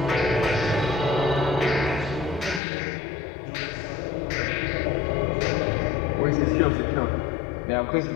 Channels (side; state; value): right; drops out; at 2.6 s